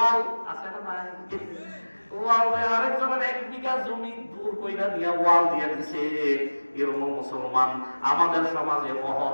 আছে না নাই, ওয়াল আরেকজনের 1 বিঘা জমি দূর কইরা দিয়া ওয়াল দিয়া দিছে। এরকম মুসলমান আমাদের সমাজে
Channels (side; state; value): both; inverted; correlation -1.00